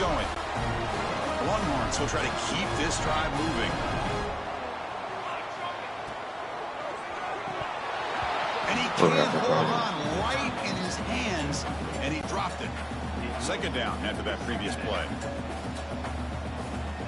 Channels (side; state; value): both; identical; correlation 1.00